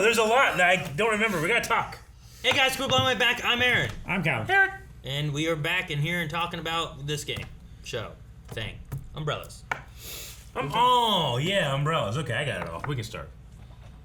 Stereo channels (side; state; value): both; identical; correlation 1.00